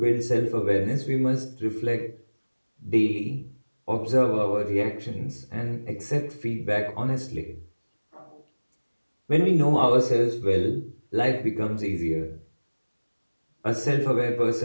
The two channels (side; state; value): both; inverted; correlation -1.00